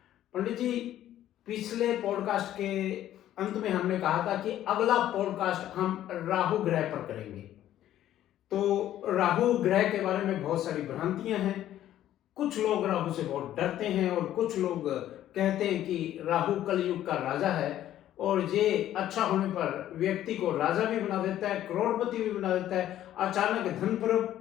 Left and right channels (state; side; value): quieter; right; 12.4 dB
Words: पंडित जी, पिछले पॉडकास्ट के अंत में हमने कहा था कि अगला पॉडकास्ट हम राहु ग्रह पर करेंगे। तो राहु ग्रह के बारे में बहुत सारी भ्रांतियां हैं। कुछ लोग राहु से बहुत डरते हैं और कुछ लोग कहते हैं कि राहु कलयुग का राजा है और ये अच्छा होने पर व्यक्ति को राजा भी बना देता है, करोड़पति भी बना देता है, अचानक धन